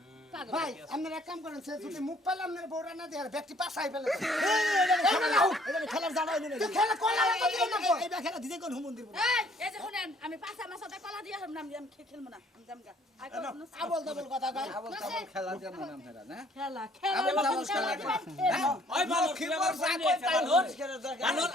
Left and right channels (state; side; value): normal; both; correlation 0.60